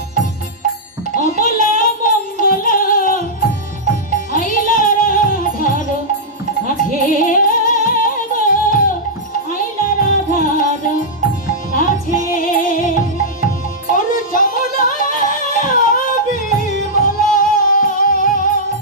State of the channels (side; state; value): both; normal; correlation -0.09